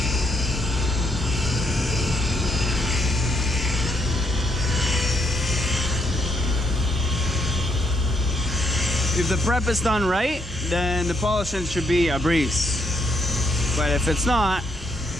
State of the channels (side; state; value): both; normal; correlation 0.75